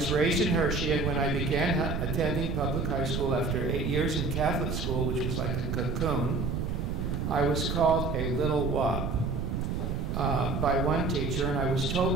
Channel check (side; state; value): right; noise; rumble, 1 dB below the sound